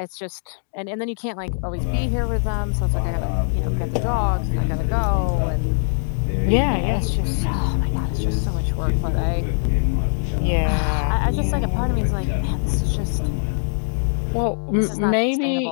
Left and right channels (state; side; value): silent; right; digital silence